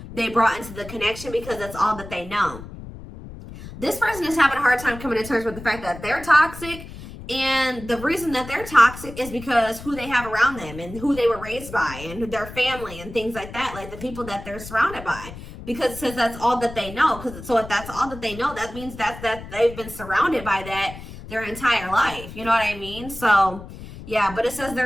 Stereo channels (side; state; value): left; noise; rumble, 13 dB below the sound